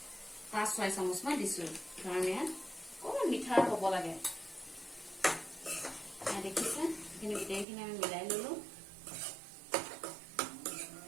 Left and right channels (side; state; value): left; drops out; at 7.7 s